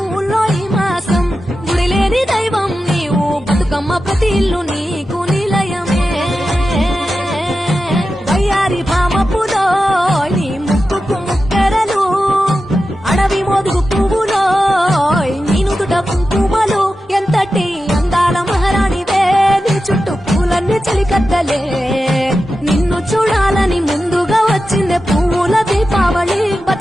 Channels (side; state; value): both; normal; correlation 0.92